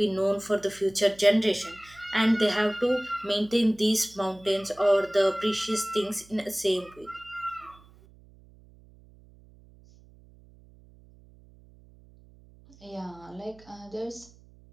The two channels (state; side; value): noise; right; hum, 25 dB below the sound